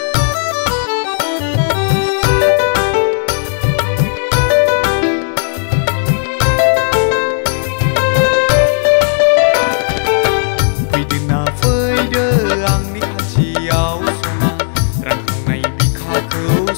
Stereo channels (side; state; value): right; silent; 64 dB below the other